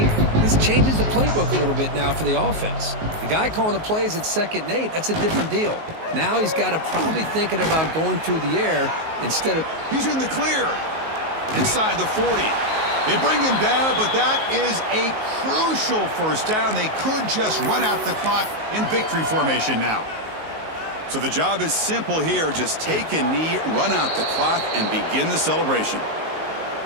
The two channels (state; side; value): late; left; 19 ms